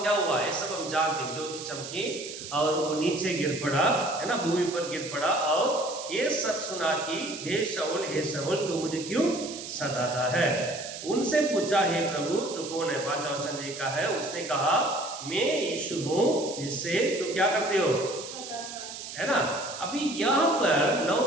क्या हुआ? ये सब हम जानते हैं, ज्योति चमकी और वो नीचे गिर पड़ा, है ना, भूमि पर गिर पड़ा, और ये सब सुना कि हे शाऊल तू मुझे क्यों सताता है? उनसे पूछा, हे प्रभु तू कौन है? 5 वचन लिखा है, उसने कहा मैं यीशु हूं जिससे तुम क्या करते हो? है ना। अभी यहाँ पर 9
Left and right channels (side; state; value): right; noise; hiss, 10 dB below the sound